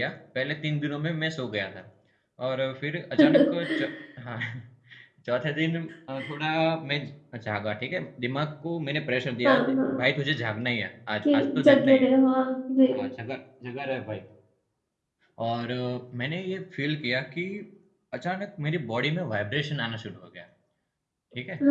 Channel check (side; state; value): both; identical; correlation 1.00